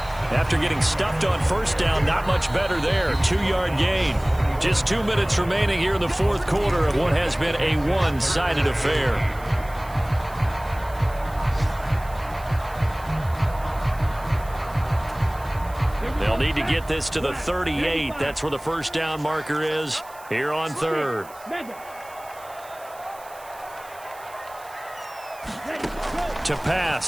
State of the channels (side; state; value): right; noise; hiss, 22 dB below the sound